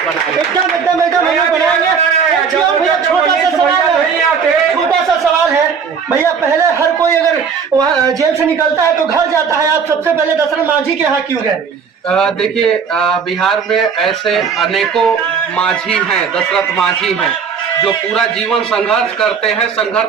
बनाएंगे। एकदम एकदम एकदम हम लोग बनाएंगे। भैया छोटा सा सवाल है भैया, पहले हर कोई अगर वहाँ जेल से निकलता है तो घर जाता है, आप सबसे पहले दशरथ मांझी के यहाँ क्यों गए? देखिए बिहार में ऐसे अनेकों मांझी हैं, दशरथ मांझी हैं जो पूरा जीवन संघर्ष करते हैं,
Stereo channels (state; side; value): quieter; left; 6.3 dB